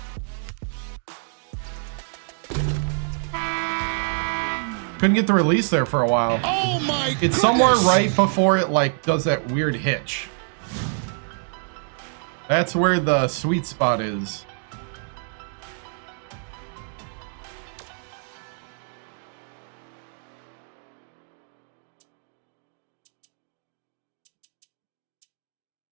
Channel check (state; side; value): silent; left; 59 dB below the other